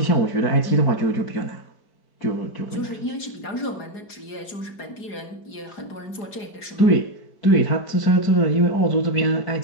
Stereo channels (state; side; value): late; right; 4.8 ms